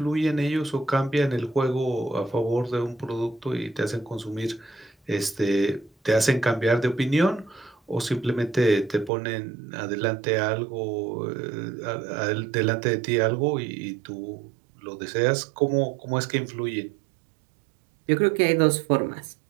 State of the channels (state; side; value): drops out; left; at 9.1 s